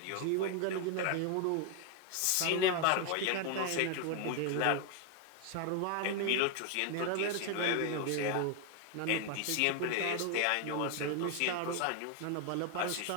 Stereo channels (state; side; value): different; both; correlation 0.01